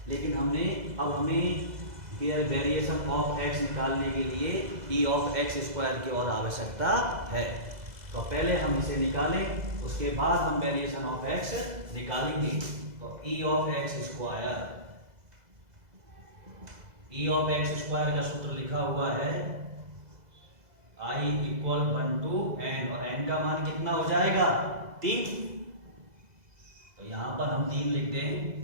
लेकिन अब हमें वेरिएशन ऑफ x निकालने के लिए e ऑफ एक्स स्क्वायर की और आवश्यकता है। तो पहले हम इसे निकालें, उसके बाद हम वेरिएशन ऑफ x निकालेंगे। तो e ऑफ एक्स स्क्वायर का सूत्र लिखा हुआ है i इक्वल 1 to n, और n का मान कितना हो जाएगा? 3। तो यहां पर हम 3 लिख दें,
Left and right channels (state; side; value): late; left; 2.0 ms